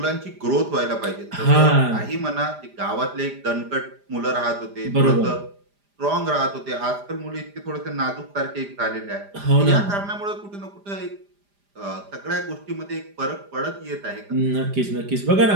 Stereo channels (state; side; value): late; left; 5.0 ms